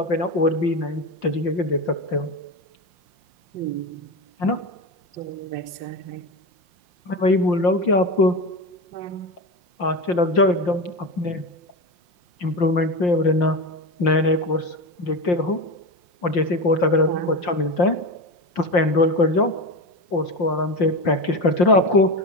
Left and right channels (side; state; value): right; late; 5.7 ms